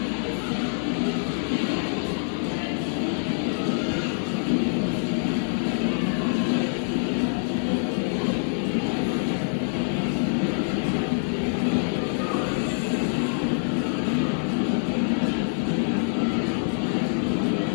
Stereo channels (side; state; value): right; silent; digital silence